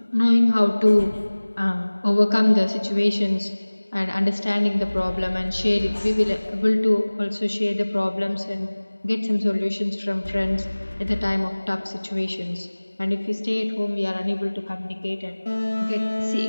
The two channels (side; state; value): both; inverted; correlation -1.00